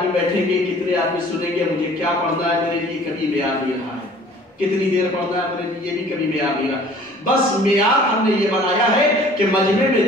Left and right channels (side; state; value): both; normal; correlation 0.51